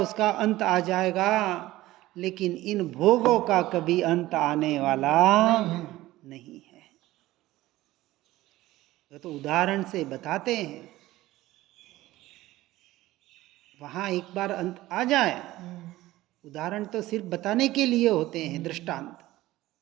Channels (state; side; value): quieter; left; 16.8 dB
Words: अंत आ जाएगा, लेकिन इन भोगों का कभी अंत आने वाला नहीं है। तो उदाहरण से बताते हैं, वहां एक बार अंत आ जाए, उदाहरण तो सिर्फ बताने के लिए होते हैं, दृष्टांत।